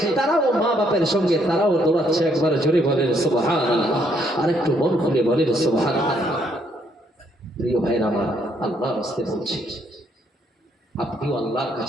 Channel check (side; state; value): both; normal; correlation 0.71